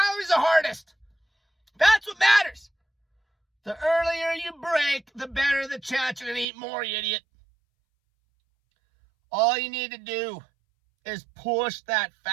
the hardest. That's what matters. The earlier you break, the better the chance you're going to eat more, you idiot. All you need to do is push that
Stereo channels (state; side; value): drops out; left; at 6.5 s